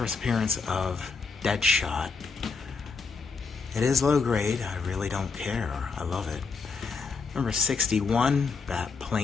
appearance of Deadshot. It is low grade. I really don't care. I love it. Number 61,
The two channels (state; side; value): quieter; right; 4.7 dB